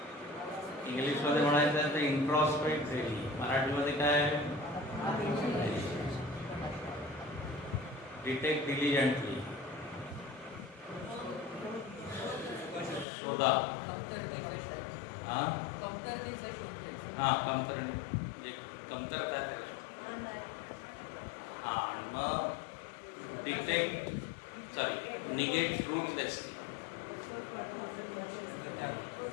इंग्लिशमध्ये म्हणायचं तर इंट्रॉस्पेक्ट डेली, मराठीमध्ये काय? डिटेक्ट डिलिजंटली, शोधा. हां म्हणजे कमतरता करा. हां, आणि मग निगेट ट्रूथलेस.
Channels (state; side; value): drops out; right; at 13.1 s